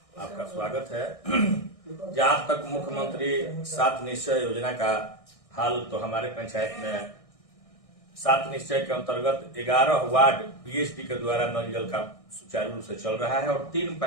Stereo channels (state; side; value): late; right; 1.6 ms